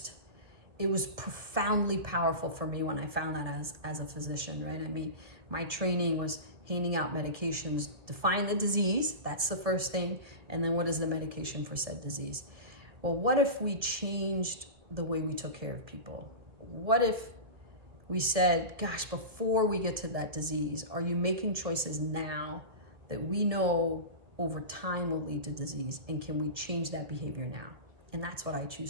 it was profoundly powerful for me when I found that as a physician, right? I mean, my training was handing out medications, define the disease, that's the first thing, and then what is the medication for said disease? Well, what if we changed the way we took care of people? What if we said, gosh, before we get to that disease, are you making choices now that we know over time will lead to disease, and can we change that behavior now? And that's what I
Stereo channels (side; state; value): left; late; 1.9 ms